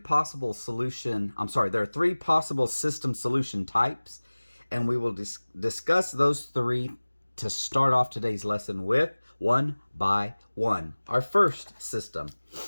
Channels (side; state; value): both; inverted; correlation -1.00